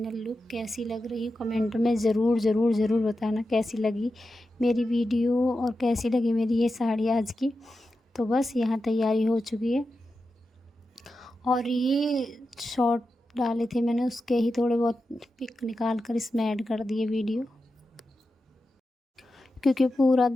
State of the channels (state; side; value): normal; both; correlation 0.91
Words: लुक। कैसी लग रही है कमेंट में ज़रूर ज़रूर ज़रूर बताना कैसी लगी मेरी वीडियो और कैसी लगी मेरी ये साड़ी आज की। तो बस यहाँ तैयारी हो चुकी है और ये शॉर्ट डाले थे मैंने, उसके ही थोड़े बहुत पिक निकाल कर इसमें ऐड कर दिए वीडियो, क्योंकि पूरा